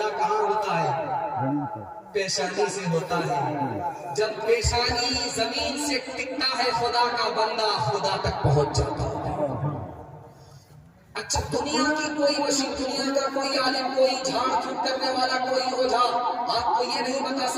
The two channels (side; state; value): both; identical; correlation 1.00